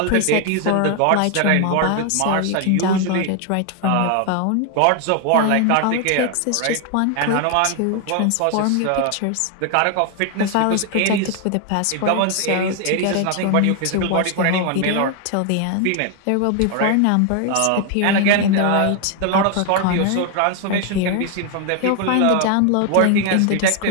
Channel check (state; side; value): different; both; correlation 0.00